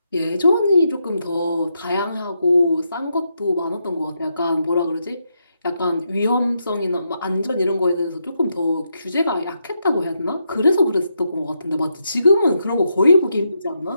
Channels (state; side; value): inverted; both; correlation -0.82